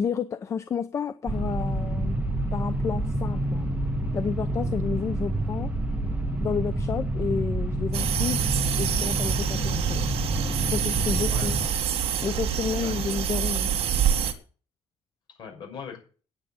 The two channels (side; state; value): both; normal; correlation 0.58